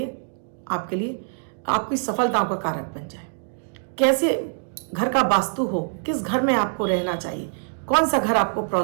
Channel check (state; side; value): silent; left; digital silence